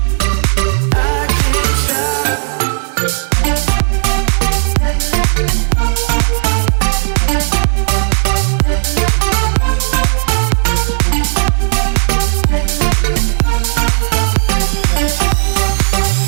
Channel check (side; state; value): left; silent; 58 dB below the other